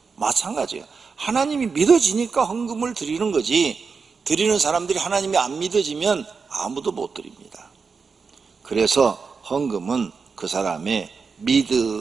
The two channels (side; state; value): left; quieter; 5.2 dB